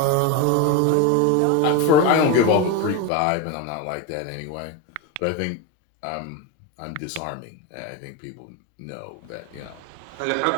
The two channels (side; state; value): both; different; correlation 0.04